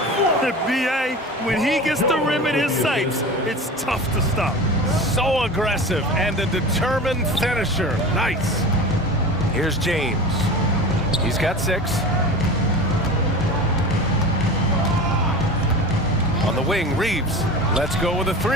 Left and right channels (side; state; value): both; normal; correlation 0.33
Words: The BA, when he gets the rim in his sights, it's tough to stop. So aggressive and a determined finisher. Nice. Here's James. He's got 6. On the wing, Reeves. Let's go with a